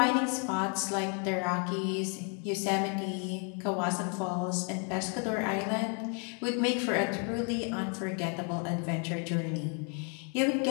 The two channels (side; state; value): right; quieter; 39.4 dB